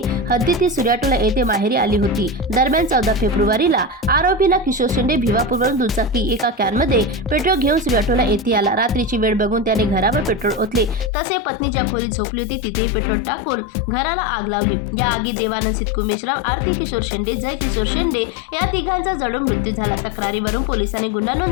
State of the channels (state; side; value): drops out; right; at 11.1 s